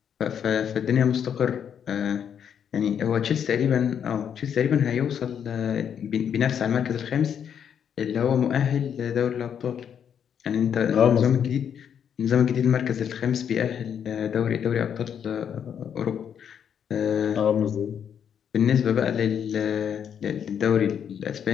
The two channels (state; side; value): quieter; right; 8.3 dB